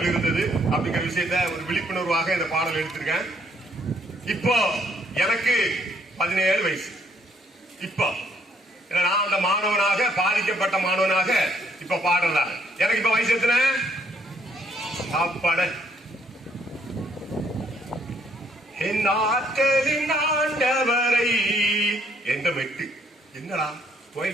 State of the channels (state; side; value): normal; both; correlation 0.68